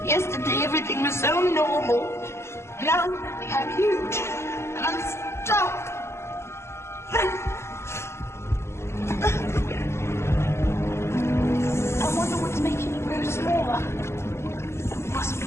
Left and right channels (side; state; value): right; late; 0.13 ms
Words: Yesterday, everything was so normal. Now, I'm huge. And I'm stuck. I wonder what's making me grow smaller. It must be